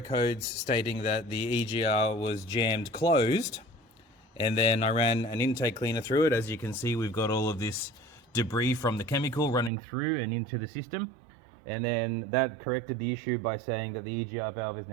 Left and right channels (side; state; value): left; drops out; at 9.7 s